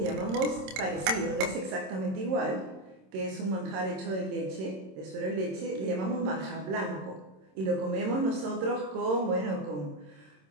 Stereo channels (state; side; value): late; left; 26 ms